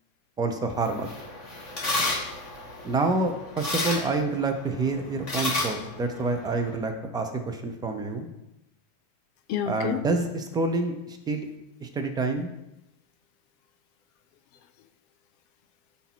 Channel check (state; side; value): late; right; 3.5 ms